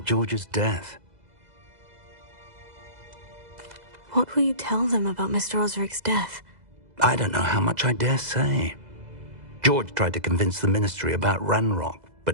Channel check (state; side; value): late; left; 2.0 ms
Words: George's death. What will you tell them about Mr. Osric's death? I don't know how much I dare say. George tried to convince the ministry about Ranrock,